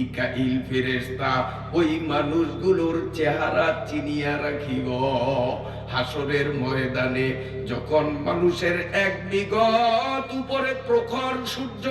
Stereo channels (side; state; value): both; identical; correlation 1.00